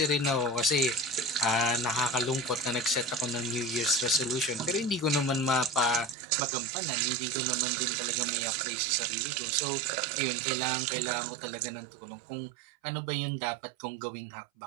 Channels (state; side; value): drops out; left; at 6.2 s